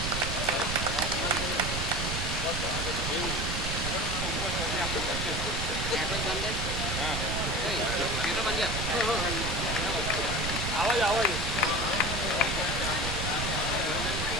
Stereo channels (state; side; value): noise; right; rumble, 2 dB below the sound